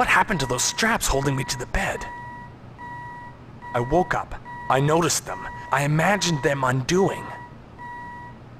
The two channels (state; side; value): identical; both; correlation 1.00